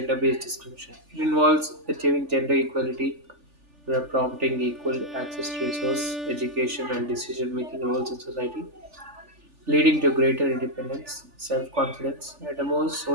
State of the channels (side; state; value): left; late; 3.4 ms